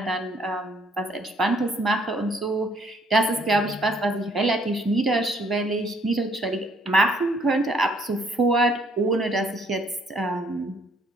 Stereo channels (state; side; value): normal; both; correlation 0.64